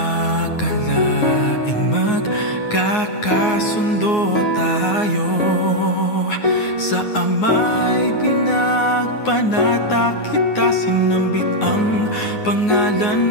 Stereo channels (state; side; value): late; right; 9.5 ms